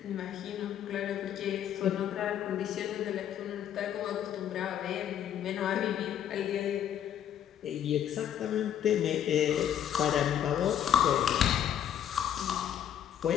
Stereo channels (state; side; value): quieter; right; 9.9 dB